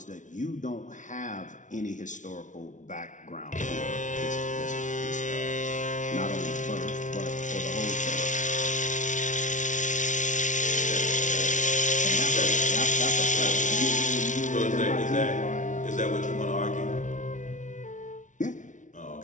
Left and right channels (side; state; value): right; late; 0.37 ms